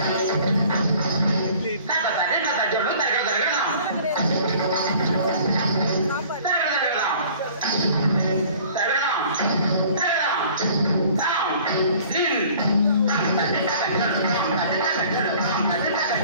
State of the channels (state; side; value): inverted; both; correlation -0.51